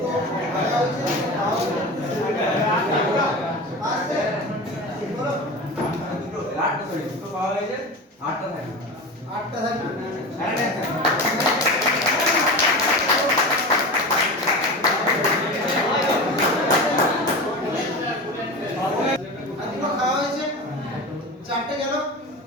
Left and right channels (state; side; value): normal; both; correlation 0.29